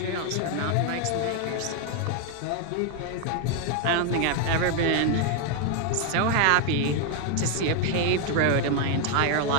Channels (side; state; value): both; different; correlation 0.01